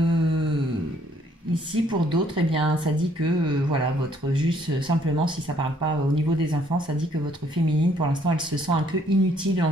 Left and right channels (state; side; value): normal; both; correlation 0.65